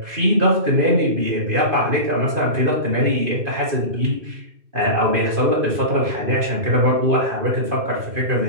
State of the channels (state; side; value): late; left; 2.5 ms